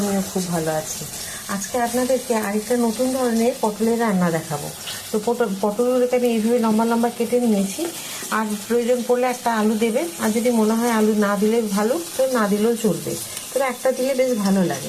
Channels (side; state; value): both; identical; correlation 1.00